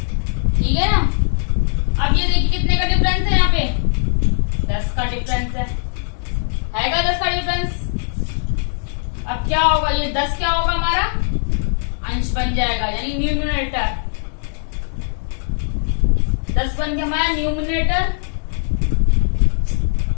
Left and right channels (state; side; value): silent; right; 66 dB below the other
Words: ठीक है ना। अब ये देखिए कितने का डिफरेंस है, यहाँ पे 10 का डिफरेंस है, 10 का डिफरेंस। अब क्या होगा, ये 10 क्या होगा हमारा अंश बन जाएगा, यानी न्यूमरेटर, 10 बन गया हमारा न्यूमरेटर,